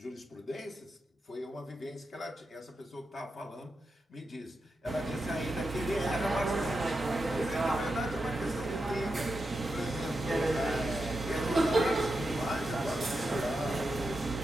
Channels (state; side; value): normal; both; correlation 0.88